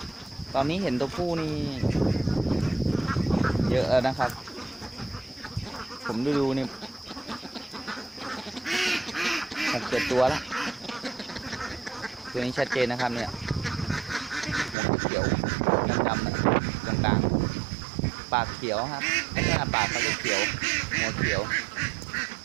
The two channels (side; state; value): left; drops out; at 14.8 s